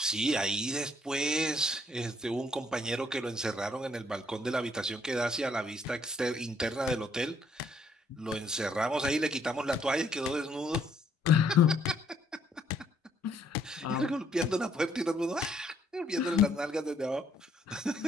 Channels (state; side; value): normal; both; correlation 0.67